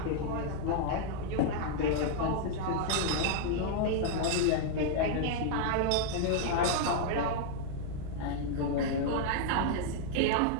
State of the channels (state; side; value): different; both; correlation -0.01